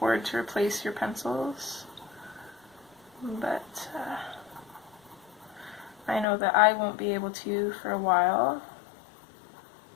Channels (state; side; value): drops out; right; at 6.2 s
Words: to replace your pencils. But I know that I won't be able to for a while,